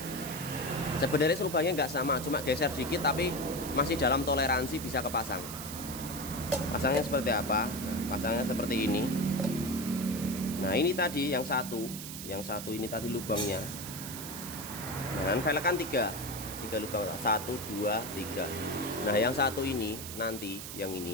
Sebenarnya lubangnya nggak sama, cuma geser dikit tapi masih dalam toleransi bisa kepasang. Pasangnya seperti apa? Pasangnya seperti ini. Nah ini tadi yang satu ini tadi lubangnya. Nah velg kan 3 lubang, 1, 2, 3. Nah yang satu ini nanti, yang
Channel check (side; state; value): right; noise; hiss, 9 dB below the sound